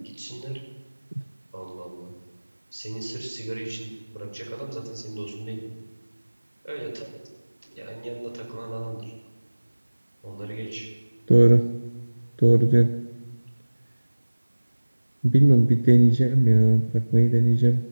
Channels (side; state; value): both; inverted; correlation -1.00